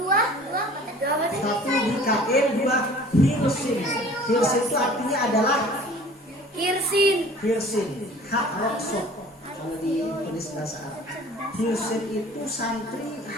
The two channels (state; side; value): normal; both; correlation 0.47